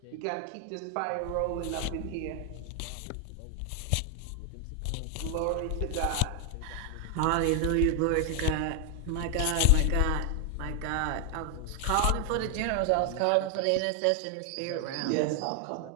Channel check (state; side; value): different; both; correlation 0.00